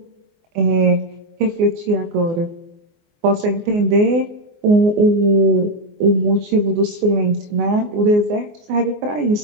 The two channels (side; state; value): left; late; 24 ms